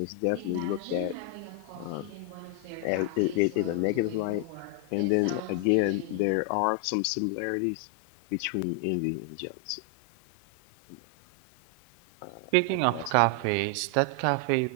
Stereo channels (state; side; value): different; both; correlation 0.00